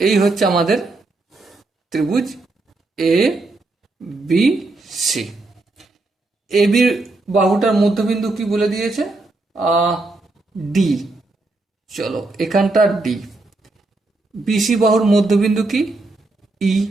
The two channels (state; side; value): quieter; left; 3.2 dB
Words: এই হচ্ছে আমাদের ত্রিভুজ এ বি সি। এ বির বাহুটার মধ্যবিন্দু কি বলে দিয়েছে? ডি। চলো এখানটা ডি। বিসি বাহুর মধ্যবিন্দু কি? ই।